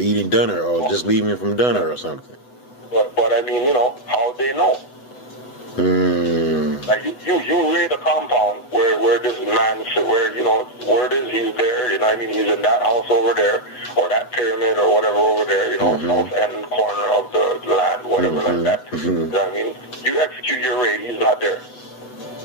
dinner or just leaving from dinner or something. But I mean, you know, how they know? Like, you raid a compound where this man, where, you know, word is he's there, you know what I mean? He's in that house over there, or that pyramid or whatever over there, you know, south end corner of the land, whatever like that. You know what I mean? You execute your raid, he's not there.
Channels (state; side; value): late; right; 8.0 ms